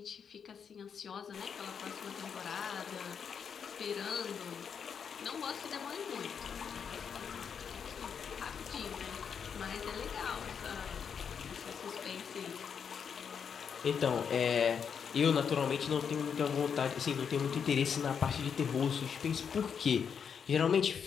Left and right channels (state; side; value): quieter; right; 7.0 dB